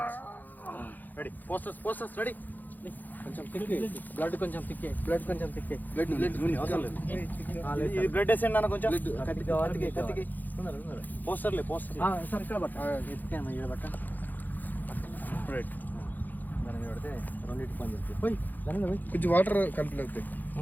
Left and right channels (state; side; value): late; right; 0.085 ms